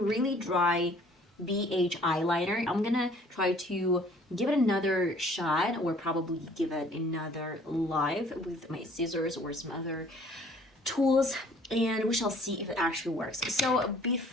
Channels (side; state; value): both; normal; correlation 0.56